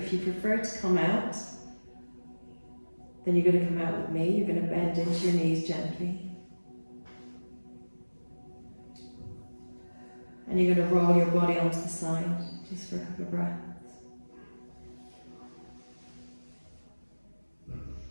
you prefer to come out, then you're going to come out with me. You're going to bend into your knees gently. And you're going to roll your body onto the side, just for a couple of breaths.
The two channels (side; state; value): both; inverted; correlation -1.00